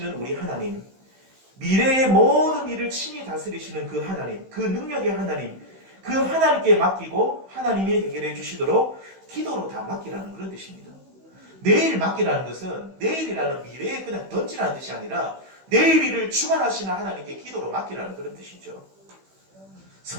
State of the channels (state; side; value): late; left; 16 ms